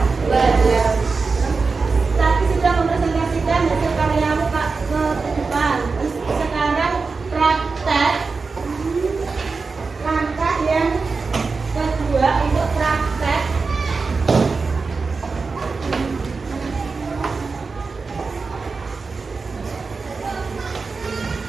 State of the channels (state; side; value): quieter; left; 4.4 dB